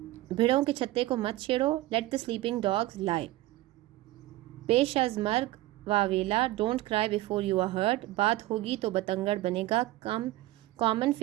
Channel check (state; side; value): quieter; left; 17.2 dB